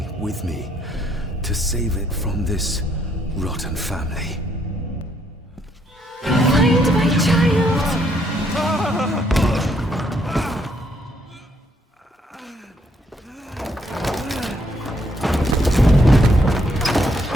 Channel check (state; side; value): normal; both; correlation 0.71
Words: with me to save it from this rotten family. Find my child!